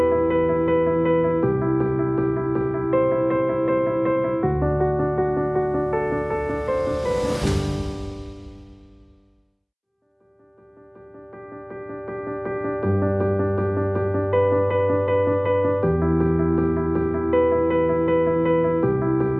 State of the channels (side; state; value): both; identical; correlation 1.00